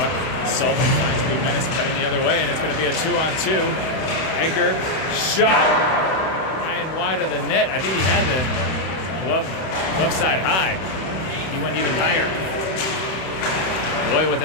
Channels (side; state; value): right; late; 31 ms